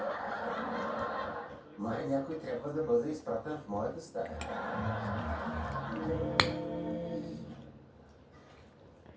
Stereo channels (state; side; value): identical; both; correlation 1.00